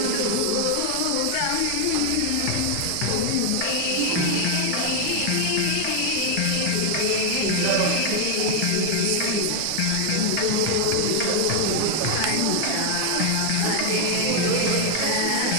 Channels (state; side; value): different; both; correlation 0.00